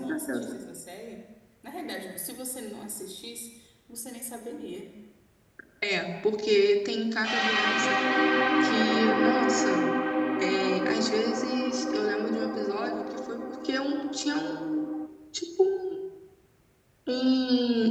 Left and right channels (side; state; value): both; identical; correlation 1.00